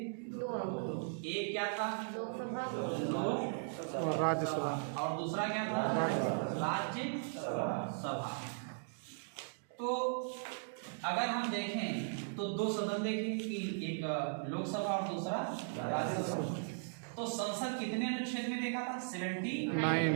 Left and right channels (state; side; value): silent; left; digital silence